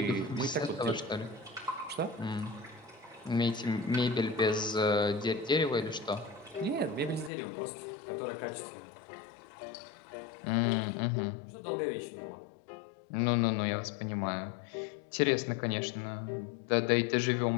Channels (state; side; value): drops out; right; at 7.3 s